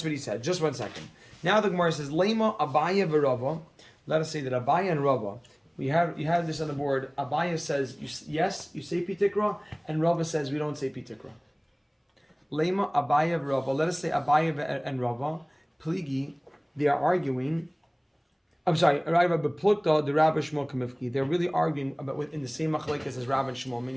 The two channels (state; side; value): identical; both; correlation 1.00